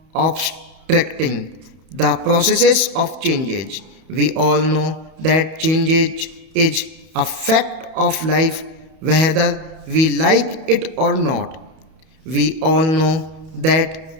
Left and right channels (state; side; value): late; left; 31 ms